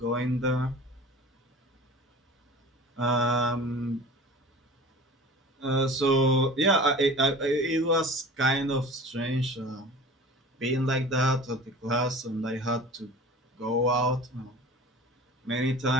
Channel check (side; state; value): both; normal; correlation 0.40